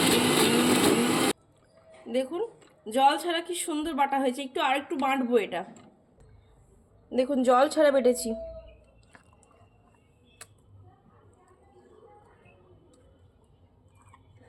দেখুন জল ছাড়া কি সুন্দর বাটা হয়েছে। আর একটু বাটবো এটা। দেখুন জল ছাড়া বেটেছি।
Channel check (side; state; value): both; identical; correlation 1.00